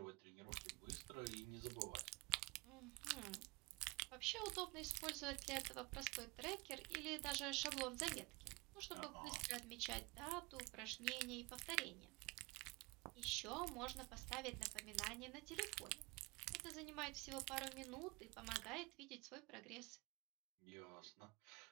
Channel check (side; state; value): left; quieter; 25.4 dB